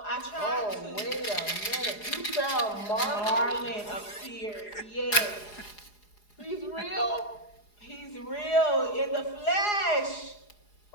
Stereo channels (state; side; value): late; right; 4.8 ms